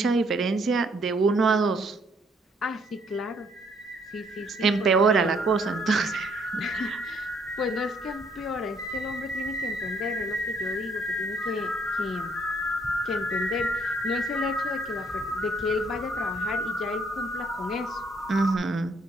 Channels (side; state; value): both; normal; correlation 0.66